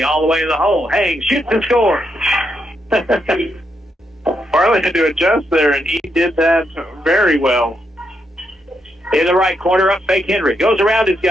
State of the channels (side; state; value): both; normal; correlation 0.80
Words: all the way to the hole. Hangs, shoots and scores. Barley had to adjust there, and he did that very well. In the right corner, up fake Henry. Goes around his